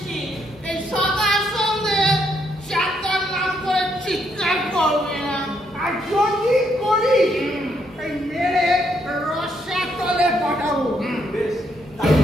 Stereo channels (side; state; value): both; normal; correlation 0.74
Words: এই সকাল সন্ধে চারটার নাম করে চিৎকার করবে না। আর যদি করি এই মেরে রসা তলে পাঠাবো। বেশ,